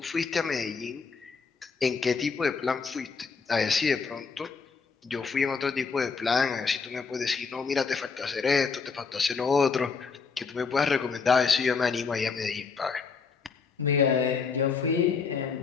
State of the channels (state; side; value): quieter; right; 5.1 dB